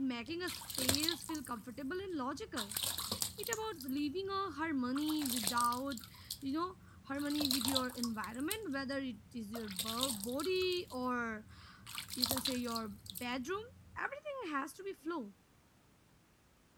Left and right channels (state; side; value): identical; both; correlation 1.00